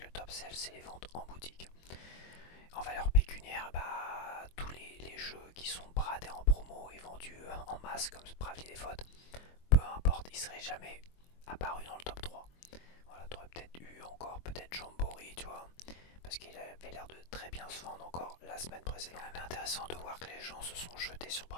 le top sell c'est les ventes en boutique. En valeur pécuniaire, bah, tous les jeux qui sont bradés en promo et vendus en masse comme Bravely Default, peu importe, ils seraient jamais apparus dans le top 3. Voilà, t'aurais peut-être eu encore peut-être Jamboree, tu vois, parce qu'il avait l'air de très bien se vendre encore la semaine précédente. C'est intéressant de voir que les gens se sont jetés sur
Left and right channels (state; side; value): late; right; 23 ms